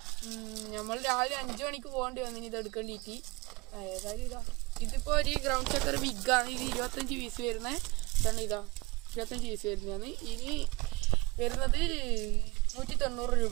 നമ്മൾ രാവിലെ 5 മണിക്ക് പോകേണ്ടി വന്നിന് ഇത് എടുക്കേണ്ടിയിട്ട്. ഏതായാലും ഇതാ ഇതിപ്പോൾ ഒരു ഗ്രൗണ്ട് ചക്കർ ബിഗാണ്. ഇത് 25 പീസ് വരുന്നത്. ഇതാണ് ഇതാ 25 പീസ് വരുന്നതാണ്. ഇനി വരുന്നത് 190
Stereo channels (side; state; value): left; quieter; 22.8 dB